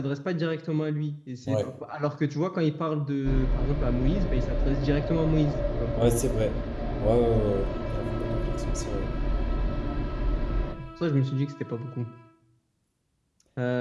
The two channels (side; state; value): both; identical; correlation 1.00